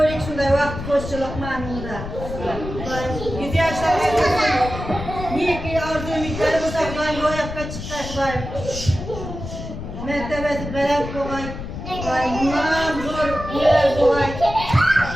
shunday vaqt qo'shchilik ma'noda. Dayım 100 yoshlarga neki orzu-umidlari bo'lsa dayım ro'yobga chiqdi dayım. Mertebesi veren kolay, bundan zor yer kolay.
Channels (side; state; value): left; noise; rumble, 8 dB below the sound